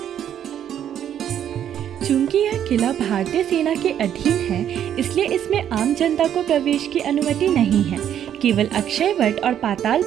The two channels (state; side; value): quieter; left; 10.0 dB